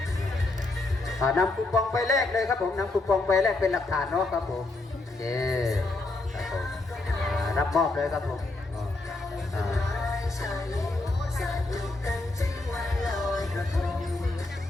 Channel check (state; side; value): quieter; right; 3.0 dB